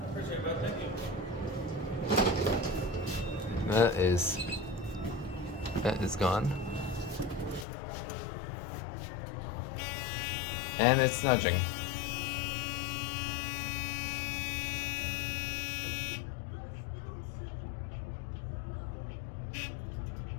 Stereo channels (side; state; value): right; drops out; at 7.7 s